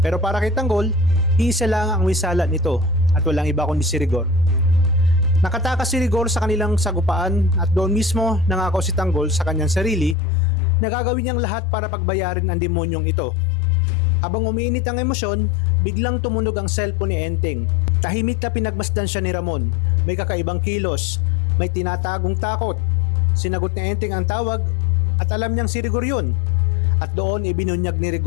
para kay Tanggol, isa lang ang wisala nito at walang iba kundi si Rigor. Nakatakas si Rigor sa kanilang sagupaan at doon mismo nangako si Tanggol sa kanyang sarili na gagawin niyang lahat para pagbayarin ang demonyong ito. Habang umiinit ang emosyon, biglang tumunog ang cellphone ni Enteng. Tahimik na pinagmasdan siya ni Ramon. May kakaibang kilos, may tinatagong takot. Sinagot ni Enteng ang tawag at alam niyang si Rigor yun. At doon ibinunyag ni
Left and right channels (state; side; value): drops out; right; at 10.2 s